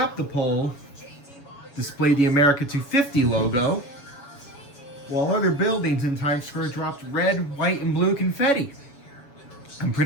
the pole, displayed the AMERICA250 logo, while other buildings in Times Square dropped red, white, and blue confetti. I'm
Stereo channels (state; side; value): late; right; 7.1 ms